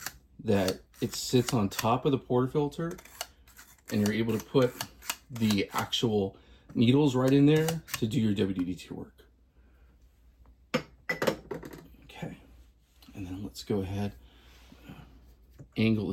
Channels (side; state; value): both; identical; correlation 1.00